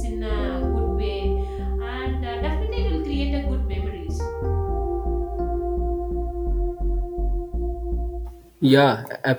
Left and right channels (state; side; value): identical; both; correlation 1.00